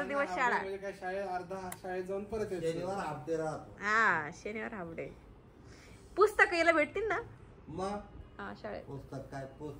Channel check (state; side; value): identical; both; correlation 1.00